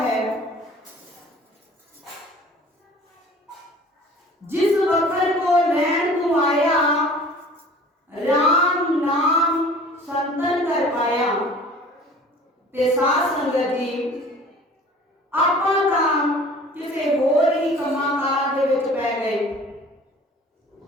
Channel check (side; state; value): both; normal; correlation 0.47